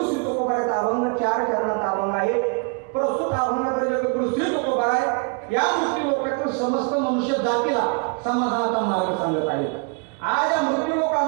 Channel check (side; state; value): left; quieter; 34.3 dB